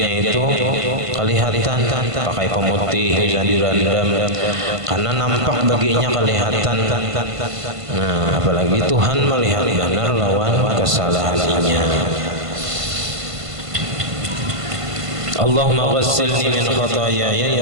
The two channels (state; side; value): late; left; 1.5 ms